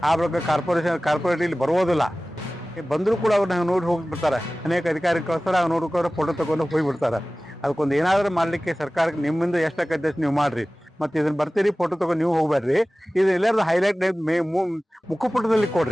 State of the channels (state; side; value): normal; both; correlation 0.97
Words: ಆ ಬಳಿಕ ಕಾರ್ಪೊರೇಟ್ ಇಲ್ಲಿ ಬರುವುದಿಲ್ಲ. ಬಂದರೂ ಕೂಡ ಅವ್ರನ್ನ ನೋಡಿ ಹೋಗಿಬಿಡ್ತಾರೆ. ಅನೇಕ ಅಧಿಕಾರಿ ಕಳಿಸ್ತಾರೆ, ಅವ್ರು ನೋಡ್ಕೊಂಡು ಫೋಟೋ ತಗೊಂಡು ಹೋಗಿಬಿಡ್ತಾರೆ. ಅದಕ್ಕೊಂದು ಏನಾದರೂ ಮಾಡಲಿಕ್ಕೆ ಸರ್ಕಾರಕ್ಕೆ ನಿಮ್ಮಿಂದ ಎಷ್ಟಾಗತ್ತೆ ಅಷ್ಟು ನೀವು ಮಾಡ್ರಿ. ಮತ್ತು ಇದನ್ನ ಬರ್ತೀರಿ ಫೋಟೋ ತಗೊಂಡು ನೀವು ಹೋಗ್ಬೇಡ್ರಿ. ಇದು ಎಲ್ಲಾರು ಹೈಲೈಟ್ ಮುಖಪುಟದಲ್ಲಿ